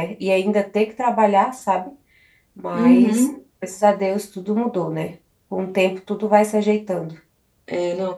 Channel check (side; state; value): both; identical; correlation 1.00